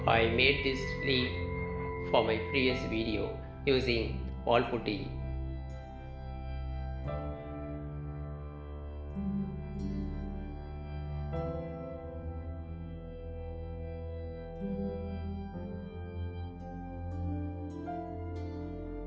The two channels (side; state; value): both; identical; correlation 1.00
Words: I made this leaf for my previous video using wallputty.